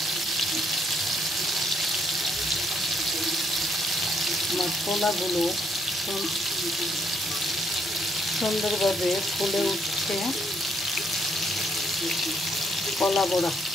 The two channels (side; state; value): both; normal; correlation 0.71